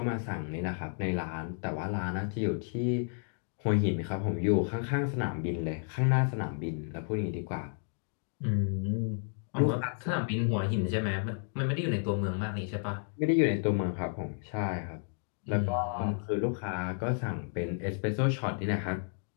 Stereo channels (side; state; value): right; silent; 56 dB below the other